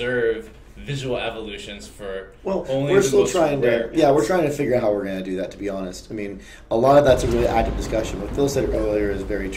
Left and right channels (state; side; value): identical; both; correlation 1.00